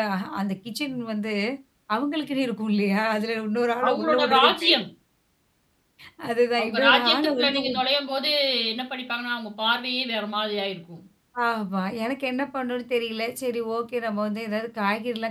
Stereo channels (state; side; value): identical; both; correlation 1.00